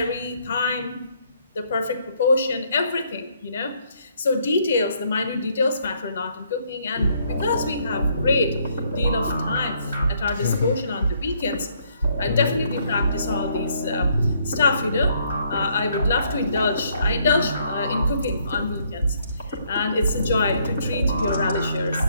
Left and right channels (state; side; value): inverted; both; correlation -0.69